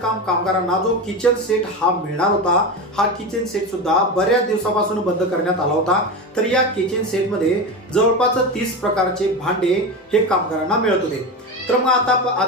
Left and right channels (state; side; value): normal; both; correlation 0.21